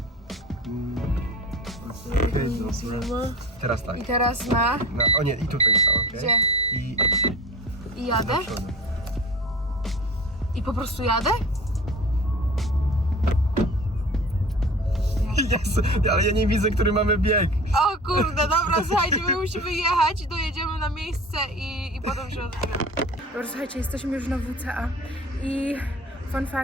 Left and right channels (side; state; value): both; normal; correlation 0.39